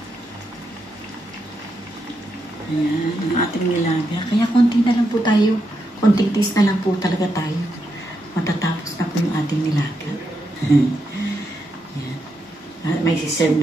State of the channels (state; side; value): normal; both; correlation 0.83